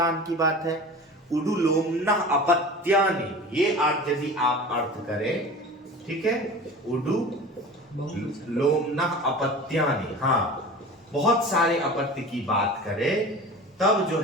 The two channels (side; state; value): both; normal; correlation 0.36